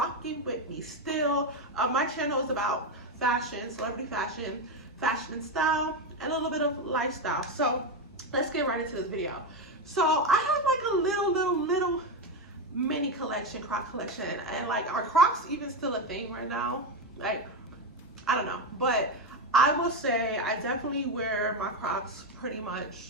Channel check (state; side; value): normal; both; correlation 0.11